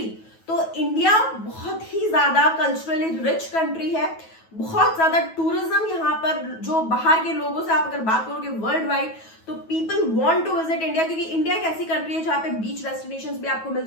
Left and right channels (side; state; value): right; late; 9.2 ms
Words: तो इंडिया बहुत ही ज्यादा कल्चरली रिच कंट्री है। बहुत ज्यादा टूरिज्म यहाँ पर, जो बाहर के लोगों से आप अगर बात करोगे वर्ल्ड वाइड, तो people want to visit India, क्योंकि इंडिया एक ऐसी कंट्री है जहाँ पे बीच डेस्टिनेशंस भी आपको मिल